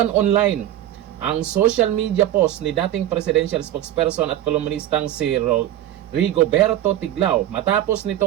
online ang social media post ni dating presidential spokesperson at kolumnistang si Rigoberto Tiglao matapos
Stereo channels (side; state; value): left; quieter; 12.8 dB